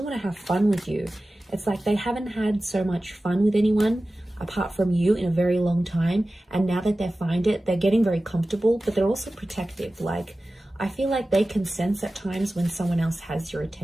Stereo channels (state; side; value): normal; both; correlation 0.96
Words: want to have fun with you. It's like they haven't had so much fun with anyone apart from you in a very long time, and now that they find it, they're getting very comfortable, but they're also protective. Like, I feel like they can sense at times when someone else has your